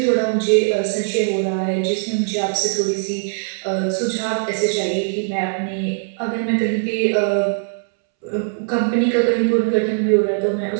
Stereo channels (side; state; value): left; silent; 66 dB below the other